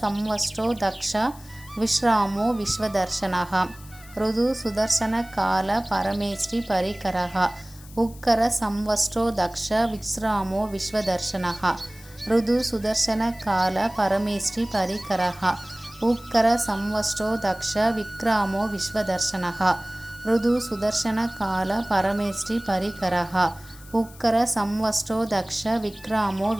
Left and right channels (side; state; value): left; noise; hiss, 21 dB below the sound